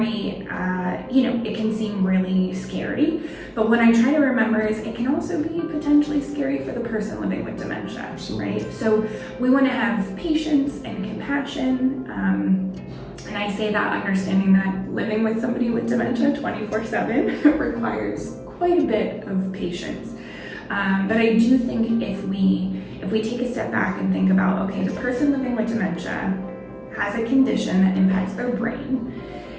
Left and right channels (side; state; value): both; identical; correlation 1.00